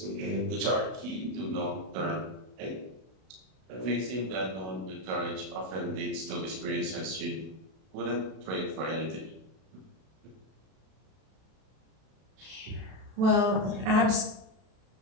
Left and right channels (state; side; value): late; left; 32 ms